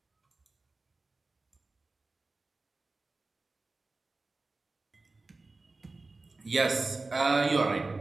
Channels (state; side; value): quieter; left; 3.5 dB